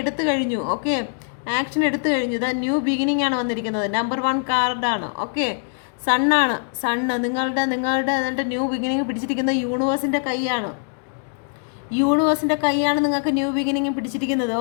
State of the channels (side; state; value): right; silent; digital silence